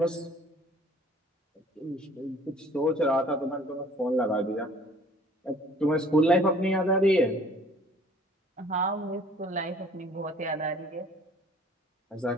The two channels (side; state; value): both; normal; correlation 0.53